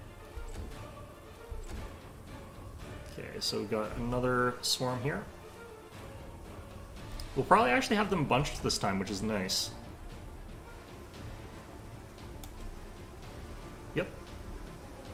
Okay, so we've got another swarm here. We'll probably actually have them bunched this time, which is nice. Yep.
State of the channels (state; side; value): identical; both; correlation 1.00